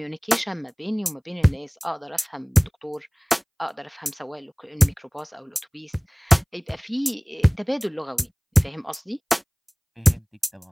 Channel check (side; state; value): both; identical; correlation 1.00